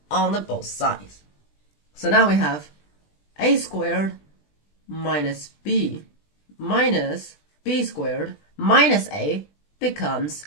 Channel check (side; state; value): right; late; 20 ms